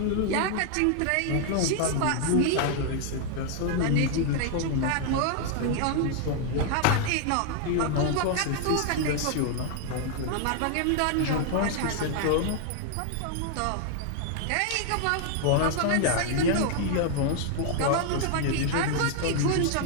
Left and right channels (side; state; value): both; different; correlation 0.00